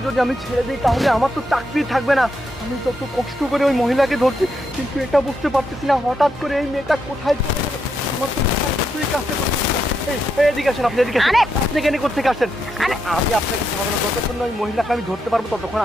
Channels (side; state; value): both; normal; correlation 0.81